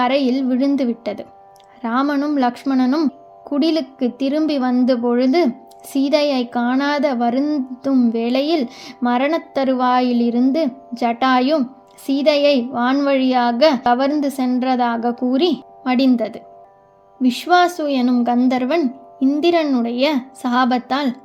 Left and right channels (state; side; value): identical; both; correlation 1.00